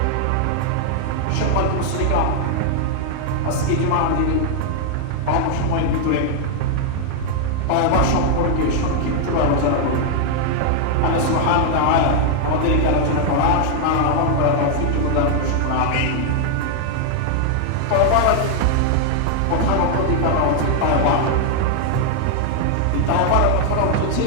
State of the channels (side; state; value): both; different; correlation 0.00